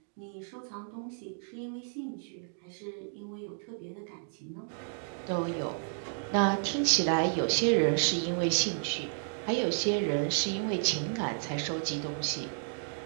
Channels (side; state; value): left; silent; digital silence